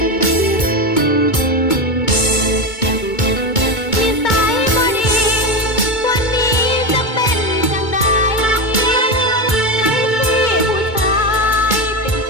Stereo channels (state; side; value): late; right; 2.2 ms